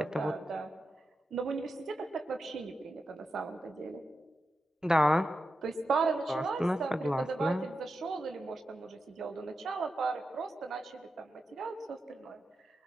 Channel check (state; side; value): normal; both; correlation 0.89